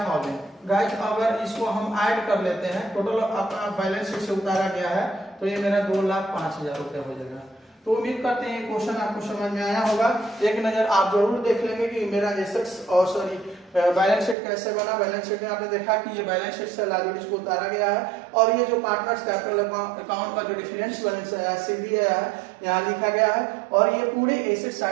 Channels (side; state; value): left; drops out; at 14.4 s